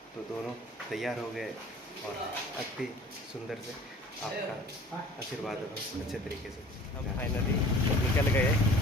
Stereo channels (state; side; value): normal; both; correlation 0.46